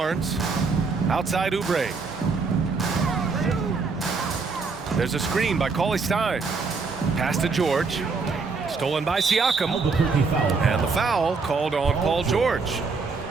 Outside Oubre. There's a screen by Cauley Stein. Pass to George. Stolen by Siakam. And the foul called on Paul George.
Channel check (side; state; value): left; quieter; 4.5 dB